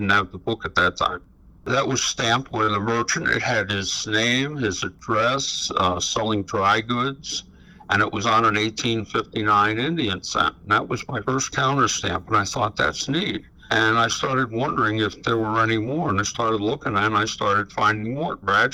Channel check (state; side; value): identical; both; correlation 1.00